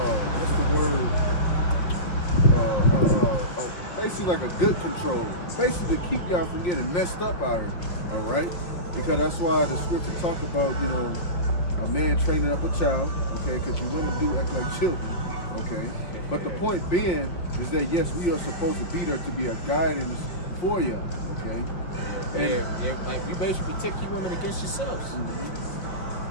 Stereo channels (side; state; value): right; late; 5.7 ms